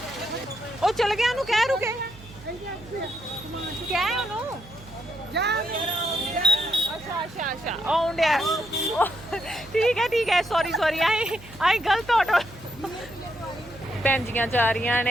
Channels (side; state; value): right; noise; hum, 20 dB below the sound